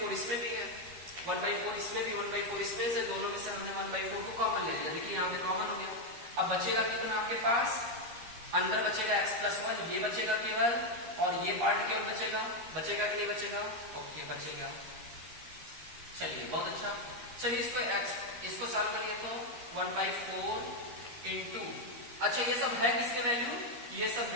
इसमें भी है, 1/4 इसमें भी, 1/4 इसमें से, दोनों में से हमने 1/4 को कॉमन ले लिया, देखिए यहाँ पे कॉमन हो गया। अब बचेगा कितना आपके पास? अंदर बचेगा x प्लस 1, ये बचेगा केवल, और ये पार्ट केवल बचेगा। बचेगा कि नहीं बचेगा? ओके बचेगा। चलिए बहुत अच्छा, चलिए इसको सॉल्व करिए, तो 1/4 इंटू, अच्छा ये सब है किसके वैल्यू? ये सब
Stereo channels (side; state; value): left; late; 13 ms